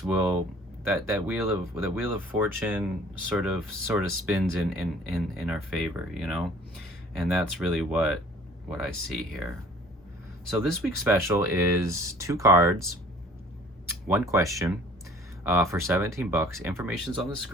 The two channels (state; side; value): normal; both; correlation 0.52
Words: will that wheel of fortune sort of spins in our favor, you know? And that's really what I see here. So this week's special is 2 cards, 1 question, for $17. Information's on the